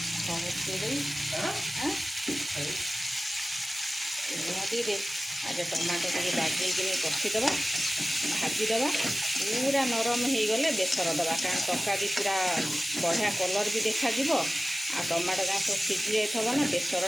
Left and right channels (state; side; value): normal; both; correlation 0.96